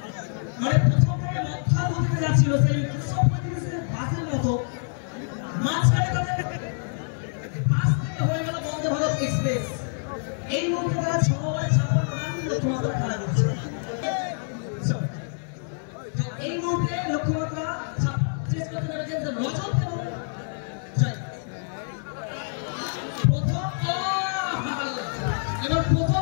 মানে প্রথম থেকে মক্কা হতে যাচ্ছিল সেই 135 বাসের মতো মাঝখানে তাদের পাশ থেকে হয়ে গেল বন্দে ভারত এক্সপ্রেস এই মুহূর্তে তারা 6 ওভারে 56 রান লক্ষ্যমাত্রা খেলা করছে এই মুহূর্তে লক্ষ্যমাত্রা শেষ করতে নেমেছেন রজত এবং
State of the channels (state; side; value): silent; right; digital silence